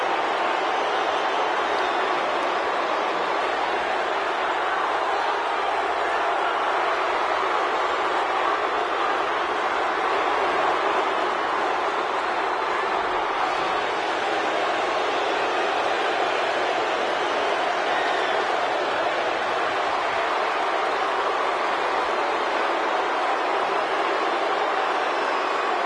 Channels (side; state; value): both; identical; correlation 1.00